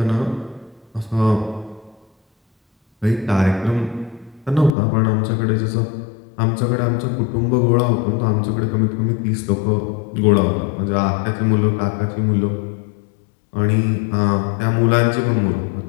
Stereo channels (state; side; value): drops out; right; at 4.8 s